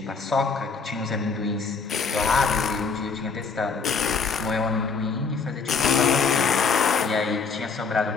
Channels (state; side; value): quieter; right; 5.1 dB